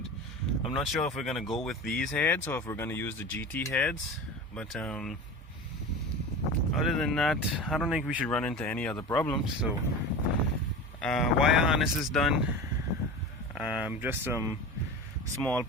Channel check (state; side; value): normal; both; correlation 0.31